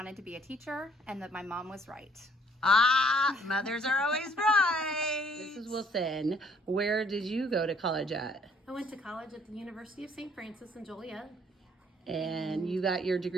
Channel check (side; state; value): both; normal; correlation 0.62